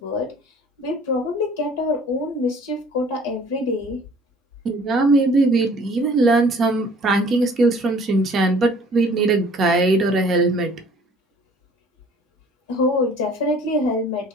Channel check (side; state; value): both; normal; correlation 0.53